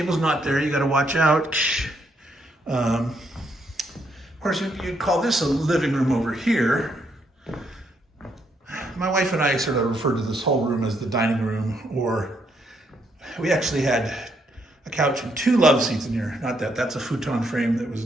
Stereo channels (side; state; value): both; normal; correlation 0.74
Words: not there, you got to watch out. Of course, you'd call this a living room over here. My wife and I sort of referred to this whole room as the dining room, or we actually had a couch and 2 love seats in here. Not that, that's a futon frame that was